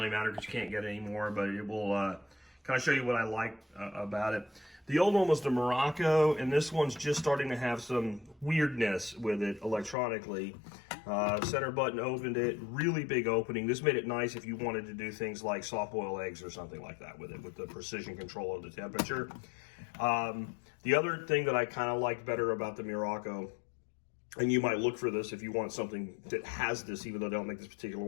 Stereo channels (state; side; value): drops out; right; at 10.0 s